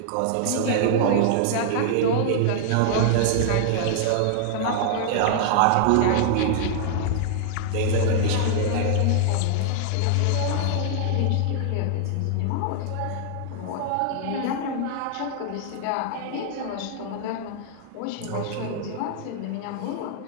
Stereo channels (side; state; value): both; different; correlation -0.01